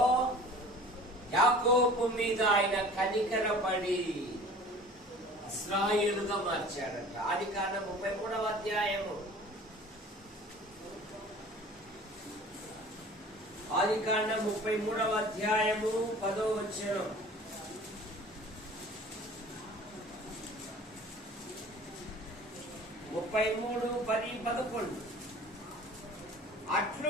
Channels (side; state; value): both; normal; correlation 0.45